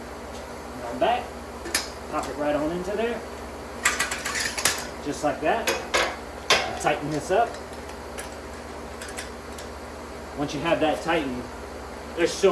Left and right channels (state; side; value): identical; both; correlation 1.00